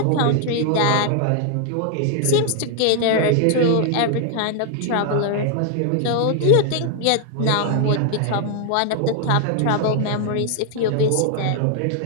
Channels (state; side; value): different; both; correlation 0.00